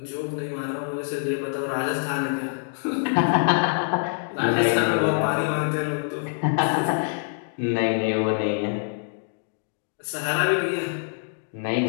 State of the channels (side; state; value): right; silent; digital silence